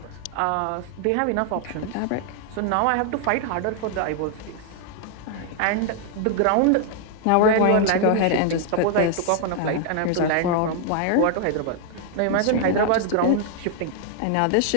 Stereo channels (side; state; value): both; different; correlation 0.00